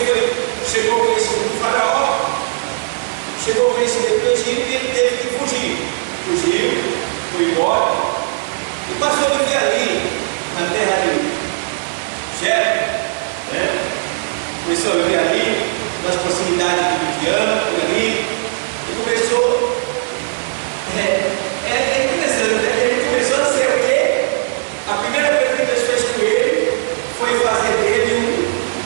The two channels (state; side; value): silent; left; 68 dB below the other